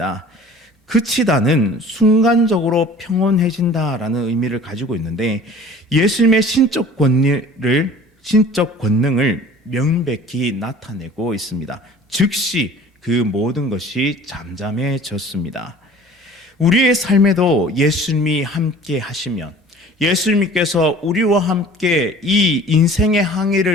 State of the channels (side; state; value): both; normal; correlation 0.46